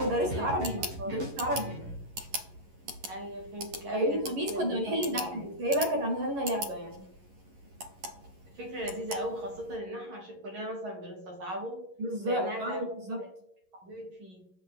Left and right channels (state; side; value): late; left; 11 ms